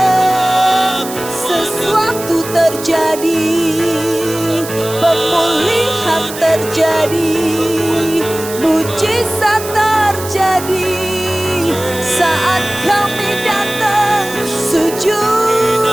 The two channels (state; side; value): noise; right; hiss, 11 dB below the sound